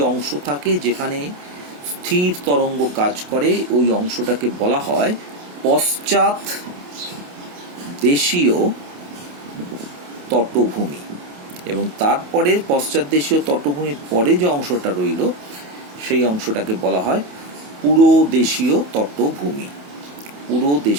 অংশ থাকে যেখানে স্থির তরঙ্গ কাজ করে, ওই অংশটাকে বলা হয় পশ্চাৎ দেশীয় তটভূমি। এবং তারপরে পশ্চাৎ দেশীয় তটভূমির পরে যে অংশটা রইল, সেই অংশটাকে বলা হয় পুরোদেশীয় তটভূমি।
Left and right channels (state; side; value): late; left; 28 ms